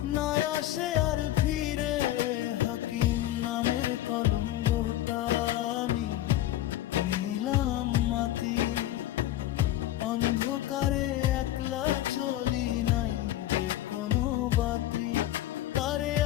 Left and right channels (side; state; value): right; quieter; 14.0 dB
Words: না আসে আর ফিরে। হাকিম নামের কলঙ্কটা আমি নিলাম মাটি, অন্ধকারে একলা চলি নাই যে কোনো বাতি। তারে